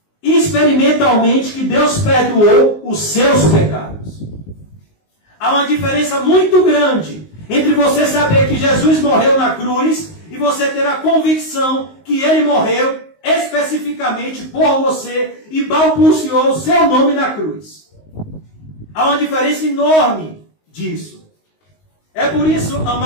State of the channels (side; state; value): right; late; 19 ms